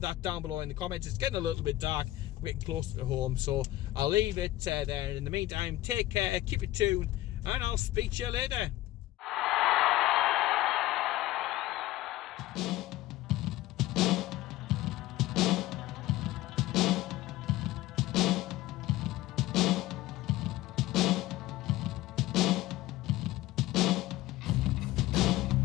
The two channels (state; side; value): quieter; right; 16.3 dB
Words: that down below in the comments. It's getting a little bit dark, getting closer to home, so I'll leave it there. In the meantime, take care, keep it tuned, and I'll speak to you later.